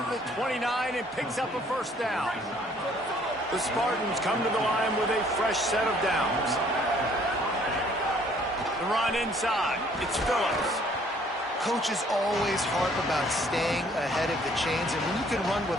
the 29 and picks up a first down. The Spartans come to the line with a fresh set of downs. The run inside. It's Phillips. Coaches always harp about staying ahead of the chains, and when you can run with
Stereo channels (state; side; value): normal; both; correlation 0.60